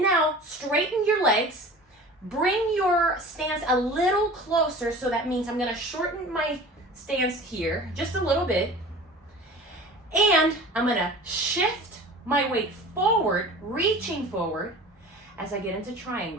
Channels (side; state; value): both; normal; correlation 0.40